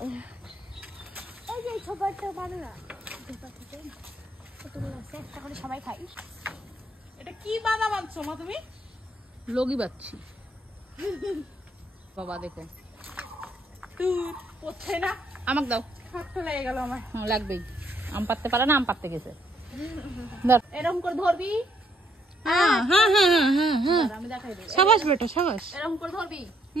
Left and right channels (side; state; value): both; normal; correlation 0.70